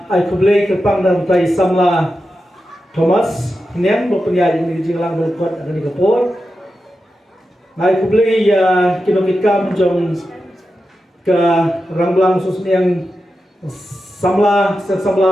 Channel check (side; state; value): both; normal; correlation 0.90